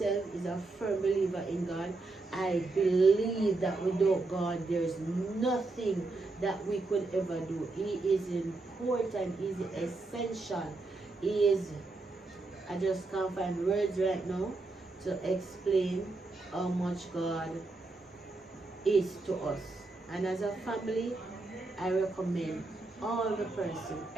is a firm believer in God. I believe that without God, there is nothing that we could ever do. He is important. He is essential. He is, I just can't find words right now to explain how much God is to us. And as a family, I recommend all the person,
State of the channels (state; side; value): quieter; left; 3.4 dB